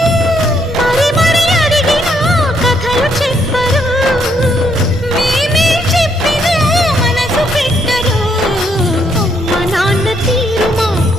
మరి మరి అడిగినా కథలు చెప్పరు, మేమే చెప్పినా మనసు పెట్టరు. అమ్మ నాన్న తీరు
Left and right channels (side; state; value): both; normal; correlation 0.73